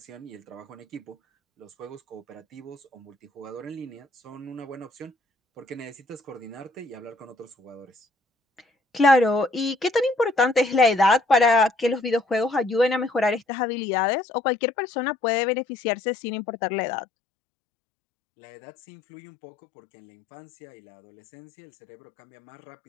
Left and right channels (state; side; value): drops out; right; at 13.4 s